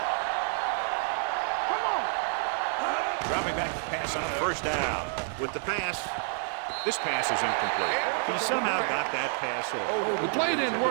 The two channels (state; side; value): silent; left; 57 dB below the other